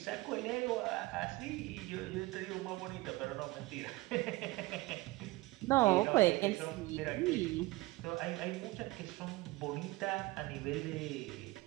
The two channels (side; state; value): left; quieter; 20.7 dB